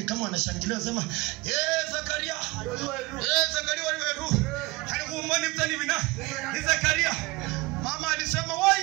kama wanashangilia sema, Zakaria. Zakaria waliweru. Alikuumoni mtani wina. Ni Zakaria. Mama alisema,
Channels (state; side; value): quieter; left; 22.6 dB